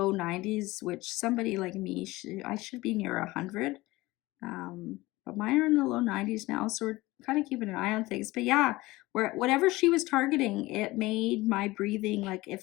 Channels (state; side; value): quieter; right; 19.9 dB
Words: 90s, which somebody like me, I should be near 100. But mine are in the low 90s now, so we're kind of keeping an eye on things. But yeah, whatever she was targeting, it made my breathing, like it